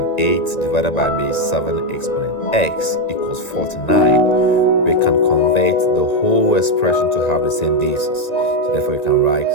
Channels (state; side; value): late; right; 1.9 ms